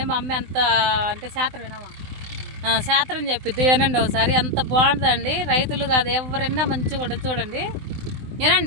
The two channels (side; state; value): left; late; 20 ms